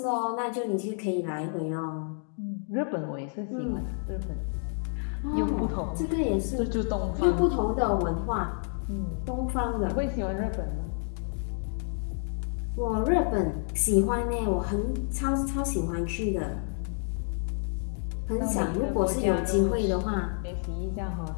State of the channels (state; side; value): silent; right; 58 dB below the other